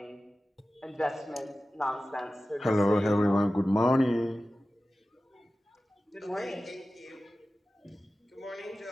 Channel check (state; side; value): normal; both; correlation 0.95